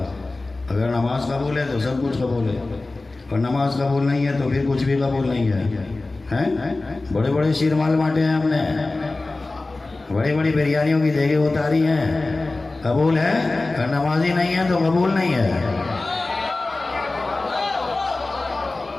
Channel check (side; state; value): right; quieter; 3.2 dB